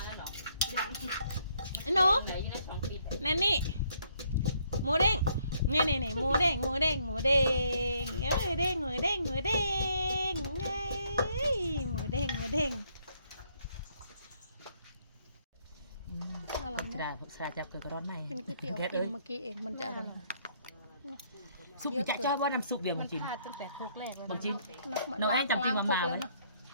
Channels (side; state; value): both; inverted; correlation -0.68